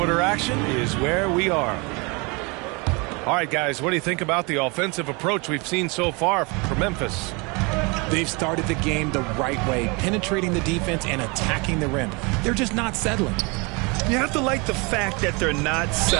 action is where we are. All right, guys, what do you think about the offensive approach we've seen so far from Memphis? They've started the game the right way, penetrating the defense and attacking the rim. They're just not settling. You have to like the fact that they're not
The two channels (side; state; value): left; quieter; 28.9 dB